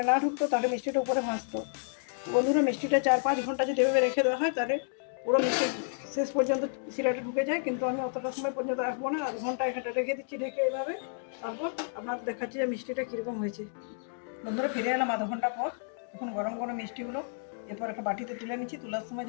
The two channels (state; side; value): silent; right; digital silence